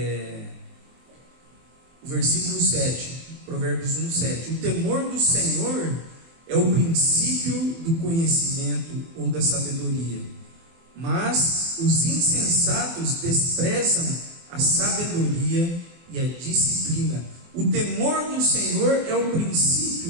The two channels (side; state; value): left; late; 24 ms